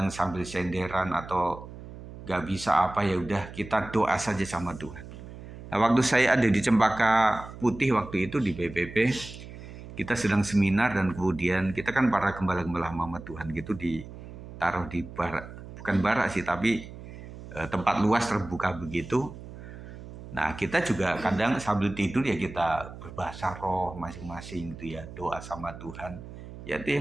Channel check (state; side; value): noise; right; hum, 14 dB below the sound